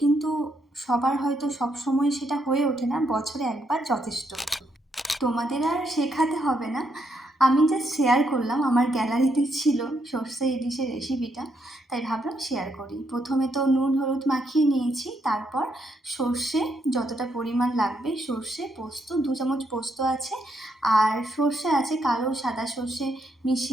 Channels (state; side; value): normal; both; correlation 0.77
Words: কিন্তু সবার হয়তো সবসময় সেটা হয়ে ওঠে না। বছরে একবার যথেষ্ট। তোমাদের আর শেখাতে হবে না, আমি জাস্ট শেয়ার করলাম। আমার গ্যালারিতে ছিল সর্ষে ইলিশের রেসিপিটা, তাই ভাবলাম শেয়ার করি। প্রথমে তো নুন হলুদ মাখিয়ে নিয়েছি, তারপর সর্ষে যতটা পরিমাণ লাগবে, সর্ষে পোস্ত 2 চামচ পোস্ত আছে, আর সর্ষে আছে কালো সাদা সর্ষে